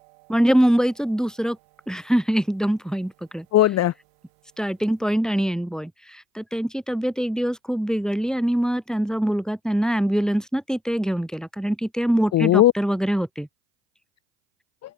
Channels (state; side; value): normal; both; correlation 0.74